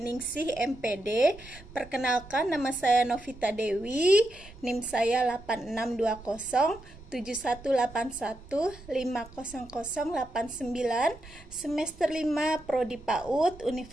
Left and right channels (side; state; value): right; noise; rumble, 19 dB below the sound